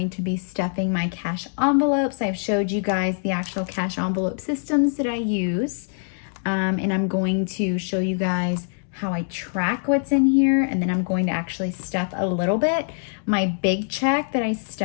to be stuffing my cash envelopes. I've showed you guys the actual cash envelope systems that I use. And I'm going to show you guys how I track what's in here, and then I'm going to actually stuff a little bit. My big check that I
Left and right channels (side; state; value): right; silent; digital silence